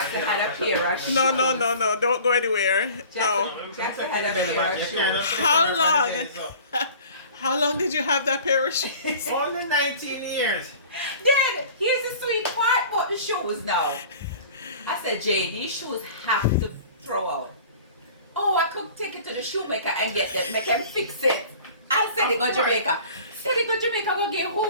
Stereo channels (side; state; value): both; inverted; correlation -0.44